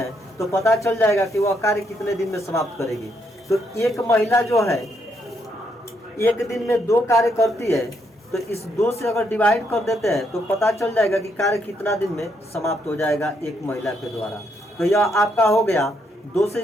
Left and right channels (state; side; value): normal; both; correlation 0.75